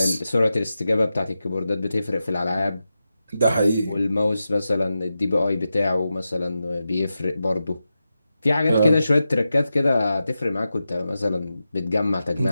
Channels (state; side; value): inverted; both; correlation -0.91